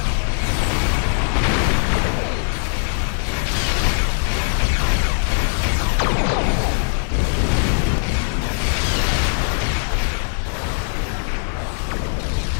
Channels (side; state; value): right; silent; 60 dB below the other